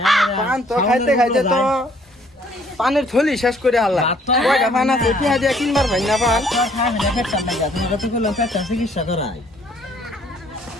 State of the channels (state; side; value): normal; both; correlation 0.62